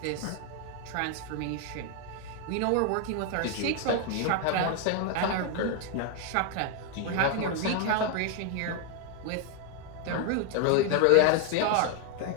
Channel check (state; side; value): different; both; correlation 0.01